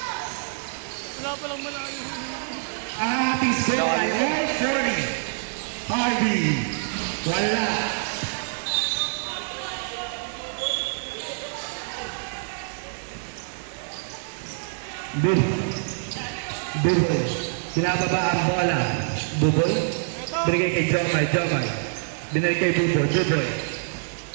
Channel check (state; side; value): silent; left; digital silence